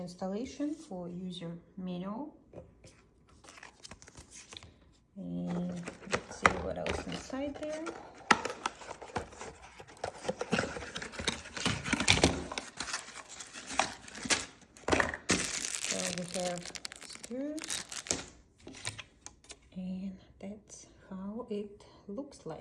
installation, for user manual. And let's see what else inside there. So we have screws, and that's how it looks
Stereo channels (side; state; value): both; identical; correlation 1.00